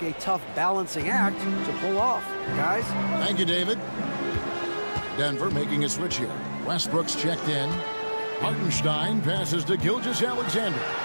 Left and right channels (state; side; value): inverted; both; correlation -1.00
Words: a tough balancing act to pull off, guys. Thank you, David. Denver making a switch here. Westbrook's checked in. Hartenstein passes to Gilgeous-Alexander.